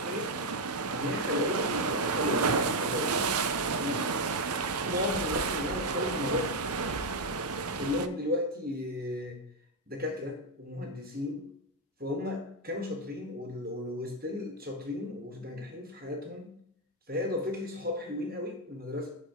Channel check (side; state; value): both; normal; correlation 0.04